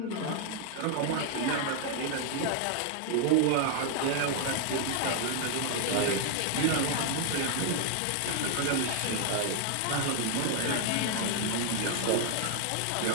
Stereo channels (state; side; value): different; both; correlation 0.00